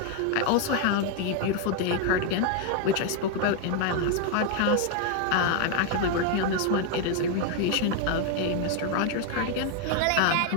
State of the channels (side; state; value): both; different; correlation 0.01